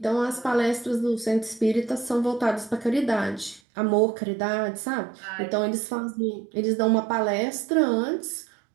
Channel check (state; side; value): drops out; left; at 3.6 s